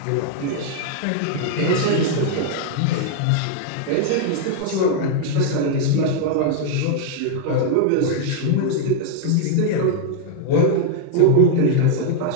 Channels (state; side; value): different; both; correlation 0.00